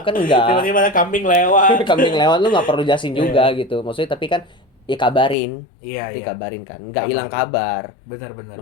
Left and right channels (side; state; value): right; drops out; at 5.4 s